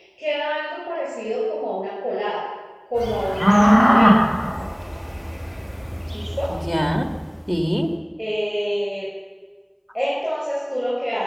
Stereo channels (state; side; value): identical; both; correlation 1.00